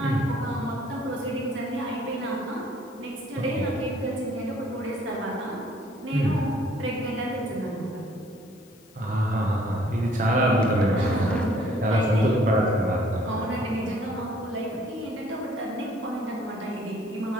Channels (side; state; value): left; noise; hiss, 28 dB below the sound